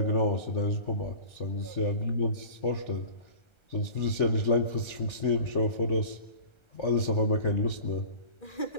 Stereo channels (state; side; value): late; right; 1.3 ms